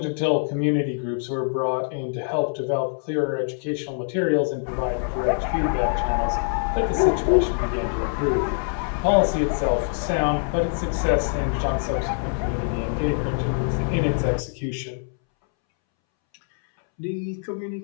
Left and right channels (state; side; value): silent; right; 62 dB below the other